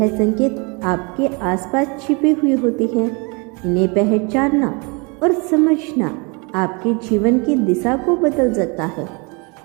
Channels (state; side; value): quieter; left; 31.0 dB